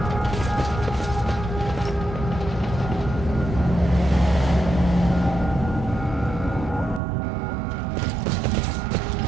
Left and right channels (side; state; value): left; drops out; at 7.0 s